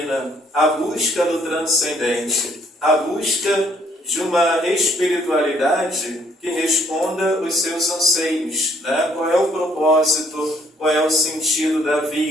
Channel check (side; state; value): both; normal; correlation 0.65